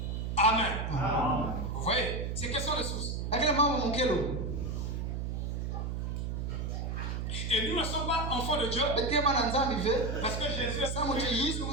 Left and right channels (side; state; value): right; noise; hum, 2 dB below the sound